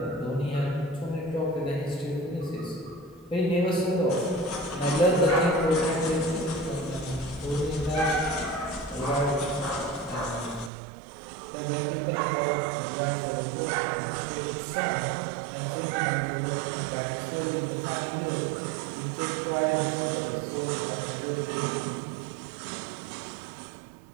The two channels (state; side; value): drops out; left; at 10.7 s